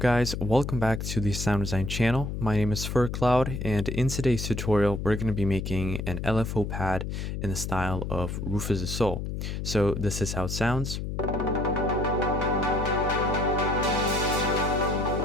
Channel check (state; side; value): noise; left; hum, 4 dB below the sound